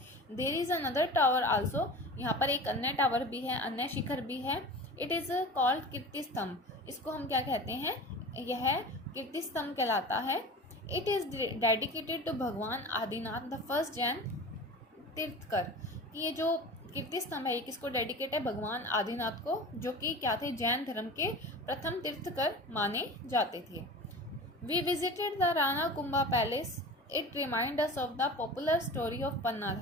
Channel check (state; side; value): normal; both; correlation 0.35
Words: There is another tower also. यहाँ पर एक अन्य टावर भी है, अन्य शिखर भी है। इट इज़ कॉल्ड कीर्ति स्तंभ। इसको हम क्या कहते हैं? यह कीर्ति स्तंभ कहलाता है। इट इज़ डेडिकेटेड टू भगवान आदिनाथ द फर्स्ट जैन तीर्थकर। ये जो कीर्ति स्तंभ है ये किसको डेडिकेट है? भगवान आदिनाथ को, जो कि क्या थे? जैन धर्म के प्रथम तीर्थकर माने जाते थे। We visited the Rana Kumbha palace it remind us of the popular story of